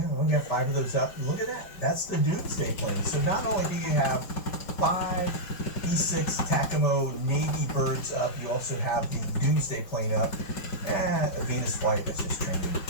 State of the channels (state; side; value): late; right; 5.4 ms